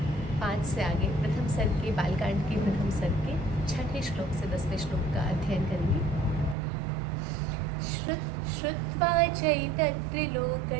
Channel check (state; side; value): drops out; left; at 6.6 s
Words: 5 से आगे प्रथम सर्ग के बालकांड के प्रथम सर्ग के 6ठे श्लोक से 10वें श्लोक का अध्ययन करेंगे। श्रुत्वा